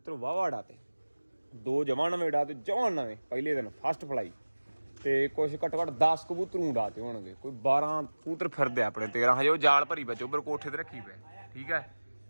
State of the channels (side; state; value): both; inverted; correlation -1.00